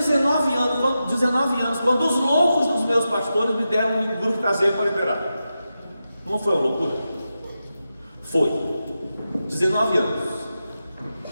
anos, quando os loucos dos meus pastores me deram um grupo caseiro para liberar. Não foi uma loucura? Foi. 19 anos.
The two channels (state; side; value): inverted; both; correlation -0.90